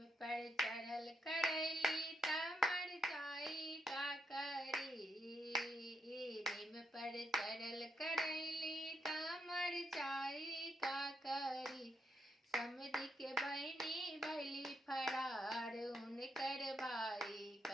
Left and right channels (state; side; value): normal; both; correlation 0.80